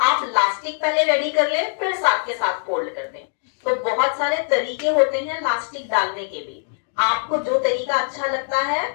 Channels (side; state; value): right; silent; digital silence